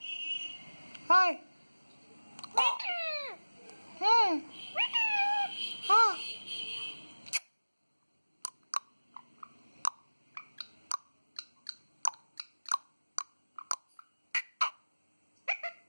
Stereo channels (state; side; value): inverted; both; correlation -1.00